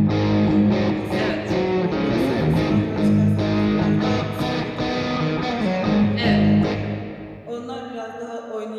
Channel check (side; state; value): both; identical; correlation 1.00